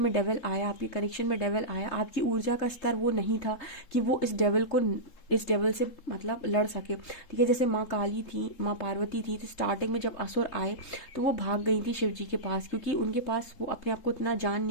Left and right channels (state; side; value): late; right; 3.7 ms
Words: डेविल आया, आपके कनेक्शन में डेविल आया, आपकी ऊर्जा का स्तर वो नहीं था कि वो इस डेविल से मतलब लड़ सके। ठीक है, जैसे माँ काली थी, माँ पार्वती थी, तो स्टार्टिंग में जब असुर आए तो वो भाग गई थी शिव जी के पास, क्योंकि उनके पास वो अपने आप को इतना जान